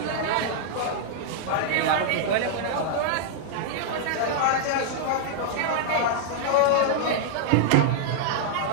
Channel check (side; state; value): both; different; correlation -0.01